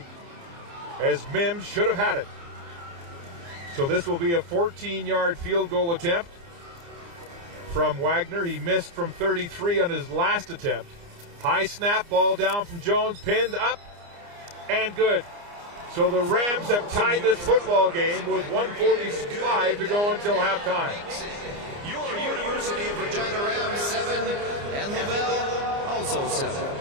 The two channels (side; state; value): left; late; 29 ms